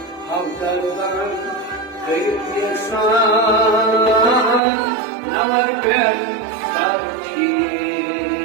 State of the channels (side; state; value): left; drops out; at 4.6 s